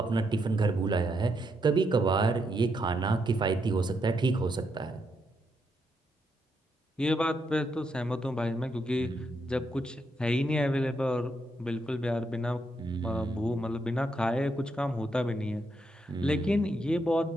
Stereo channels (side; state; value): both; normal; correlation 0.79